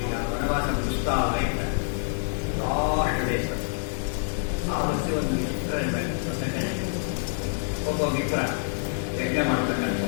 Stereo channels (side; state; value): right; silent; digital silence